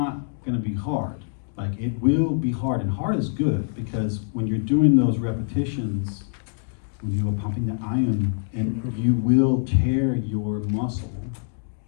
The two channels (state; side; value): silent; right; digital silence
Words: gonna be hard. Like, it will be hard, and hard is good, because when you're doing those repetitions, when you are pumping the iron, and you will tear your muscle,